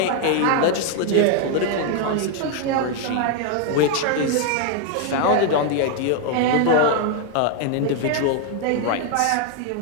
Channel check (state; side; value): different; both; correlation 0.00